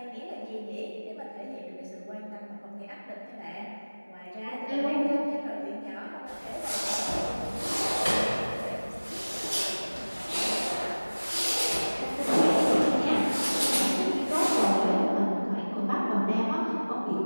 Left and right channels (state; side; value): inverted; both; correlation -1.00